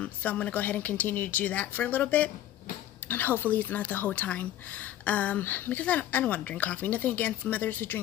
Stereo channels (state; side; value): quieter; right; 12.6 dB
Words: going to go ahead and continue to do that for a little bit, and hopefully it's not the whole time. Because I don't want to drink coffee. Nothing against mothers who